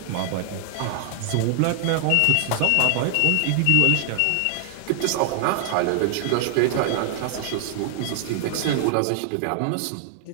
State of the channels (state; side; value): different; both; correlation 0.00